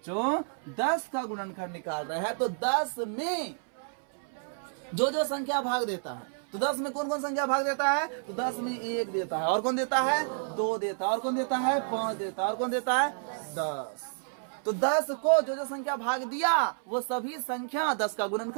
10 का गुणनखंड निकाल रहे हैं, तो 10 में जो जो संख्या भाग देता है, तो 10 में कौन कौन संख्या भाग देता है? तो 10 में 1 देता है, और कौन देता है? 2 देता है, और कौन देता है? 5 देता है, और कौन देता है? 10। तो 10 को जो जो संख्या भाग दिया वो सभी संख्या 10 का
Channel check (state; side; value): silent; left; 58 dB below the other